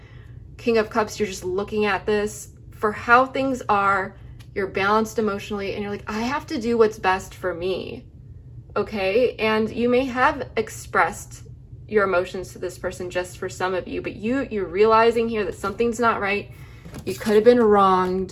King of Cups, you're just looking at this for how things are. You're balanced emotionally, and you're like, I have to do what's best for me. Okay, and you may have expressed your emotions to this person, just for some of you, but you're realizing here that something's not right. You could have been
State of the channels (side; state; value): both; identical; correlation 1.00